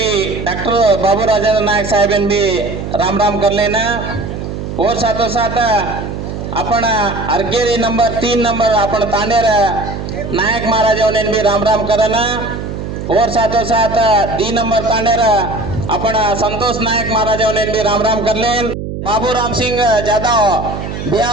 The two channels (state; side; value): noise; right; hum, 7 dB below the sound